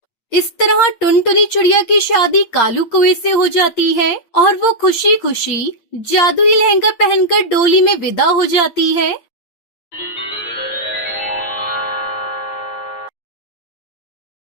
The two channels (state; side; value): late; right; 8.7 ms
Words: इस तरह टुनटुनी चिड़िया की शादी कालू कौवे से हो जाती है और वो खुशी खुशी जादुई लहंगा पहनकर डोली में विदा हो जाती है।